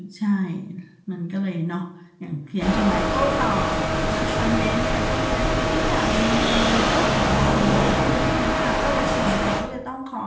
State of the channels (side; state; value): both; identical; correlation 1.00